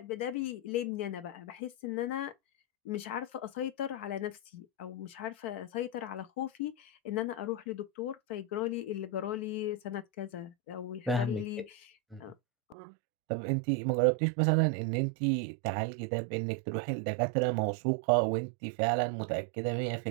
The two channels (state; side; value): drops out; left; at 12.8 s